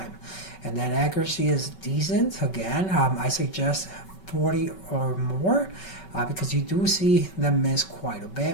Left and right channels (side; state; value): right; late; 5.3 ms